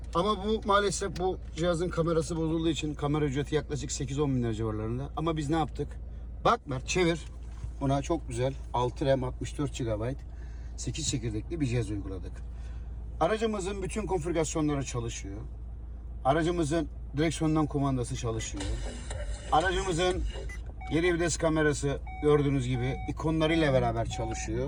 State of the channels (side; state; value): both; identical; correlation 1.00